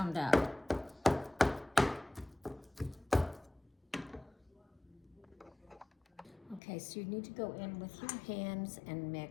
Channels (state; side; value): drops out; right; at 6.6 s